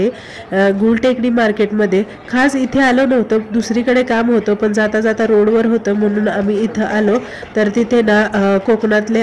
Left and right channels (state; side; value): identical; both; correlation 1.00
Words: गुलटेकडी मार्केटमध्ये. खास इथे आलो नव्हतं, दुसरीकडे काम होतं, पण जाता जाता रोडवर होतं म्हणून आम्ही इथं आलो. तर तिथे ना कोकणातले